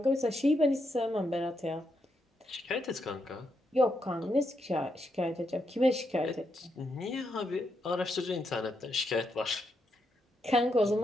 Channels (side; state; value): both; normal; correlation 0.81